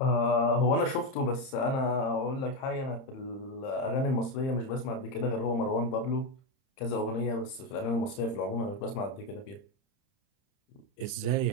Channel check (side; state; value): right; late; 30 ms